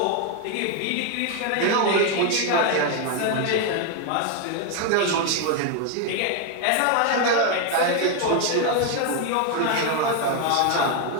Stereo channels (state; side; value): different; both; correlation 0.01